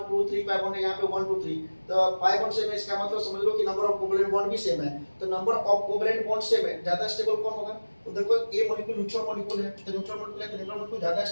2 3 पाई बॉन्ड है, यहाँ पे 1 2 3। तो पाई बॉन्ड सेम है, इसका मतलब समझ लो कि नंबर ऑफ कोवेलेंट बॉन्ड भी सेम है। तो number of covalent bond same है, ज्यादा स्टेबल कौन होगा, तो देखो ए मॉलिक्यूल न्यूट्रल मॉलिक्यूल है, तो न्यूट्रल मॉलिक्यूल है तो न्यूट्रल मॉलिक्यूल ज्यादा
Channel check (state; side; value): inverted; both; correlation -1.00